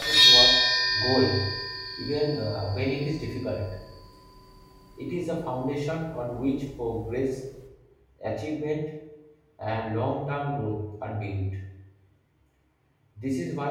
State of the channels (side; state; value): both; identical; correlation 1.00